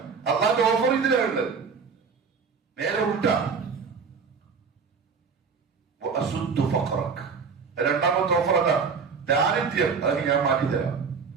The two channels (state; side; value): quieter; left; 5.6 dB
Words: അല്ലാതെ ഓഫർ ഇതിലുണ്ട്. നേരെ ഉൾട്ടാ. രണ്ടാമത്തെ ഓഫർ അതാ, ദാരിദ്ര്യം. അത് ഞാൻ മാറ്റിത്തരാം.